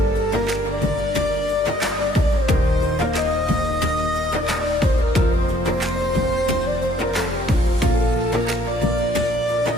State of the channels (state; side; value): normal; both; correlation 0.62